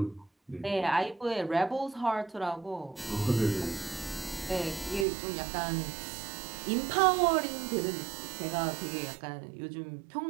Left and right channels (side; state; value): left; drops out; at 5.1 s